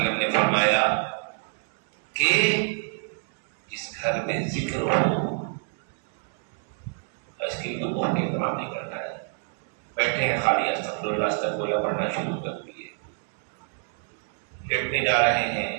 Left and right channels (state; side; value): silent; left; 56 dB below the other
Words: نے فرمایا کہ جس گھر میں ذکر ہو، اس کے لیے تو بہت اہتمام نہیں کرنا ہے، بیٹھے ہیں خالی استغفر اللہ استغفر اللہ پڑھنا شروع کر دیے، لیٹنے جا رہے